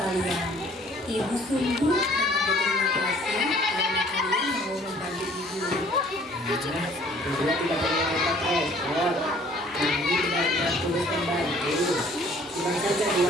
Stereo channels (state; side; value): normal; both; correlation 0.56